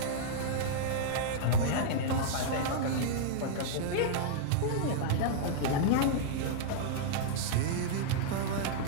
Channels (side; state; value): both; different; correlation -0.02